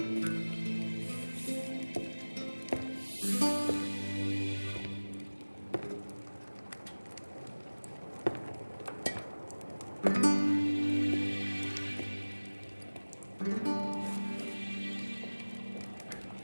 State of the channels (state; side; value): inverted; both; correlation -1.00